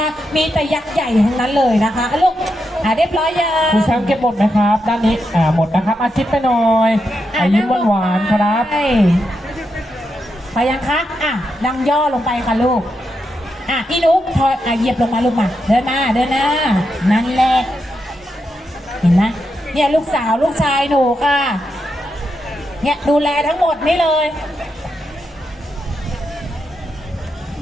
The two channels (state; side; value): normal; both; correlation 0.84